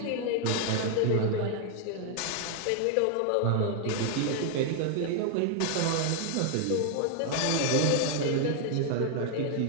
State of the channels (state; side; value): different; both; correlation 0.00